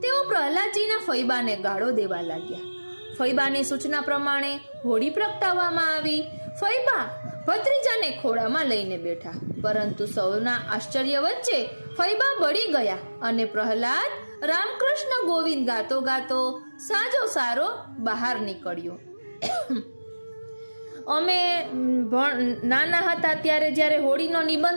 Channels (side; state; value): both; inverted; correlation -1.00